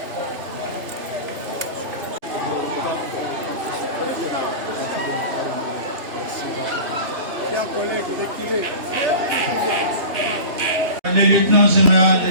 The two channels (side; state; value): left; late; 3.0 ms